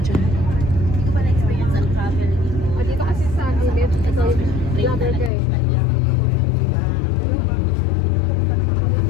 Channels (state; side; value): drops out; right; at 5.3 s